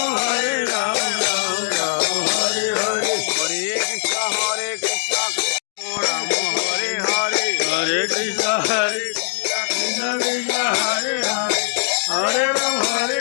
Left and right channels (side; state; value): right; silent; digital silence